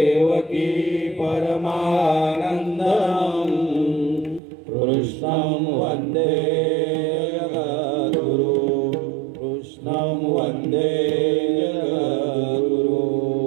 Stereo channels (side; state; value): left; drops out; at 4.4 s